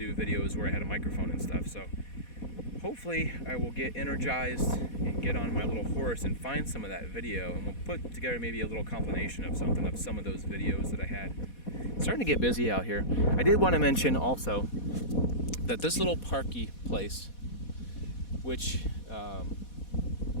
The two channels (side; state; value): right; late; 4.2 ms